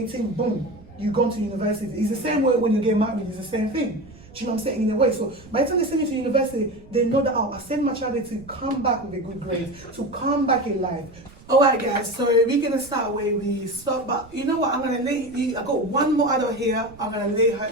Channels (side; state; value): right; noise; rumble, 22 dB below the sound